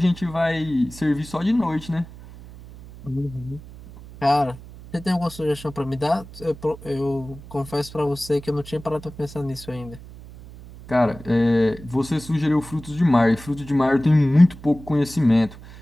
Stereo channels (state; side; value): noise; right; hum, 17 dB below the sound